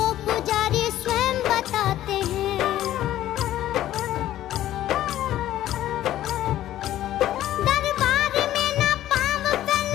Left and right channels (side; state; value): right; quieter; 13.3 dB